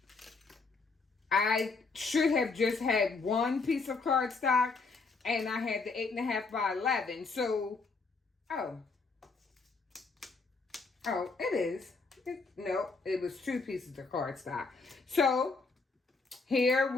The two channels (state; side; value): quieter; right; 4.2 dB